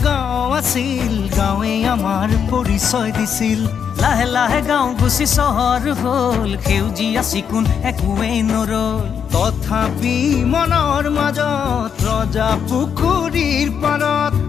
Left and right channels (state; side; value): quieter; right; 7.5 dB